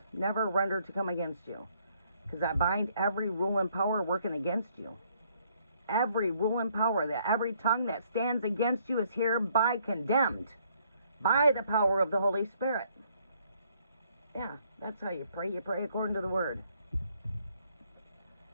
never rendered to come against you. Because I bind every rule and power working against you. Every rule and power, that every tongue that stands against you is hereby condemned by the power of the Holy Spirit. Yeah, that's how you pray. You pray according to the word.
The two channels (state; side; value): inverted; both; correlation -0.67